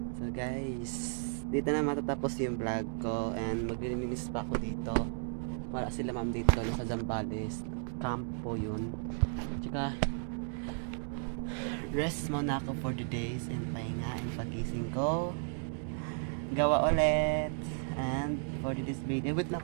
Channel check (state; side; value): silent; left; digital silence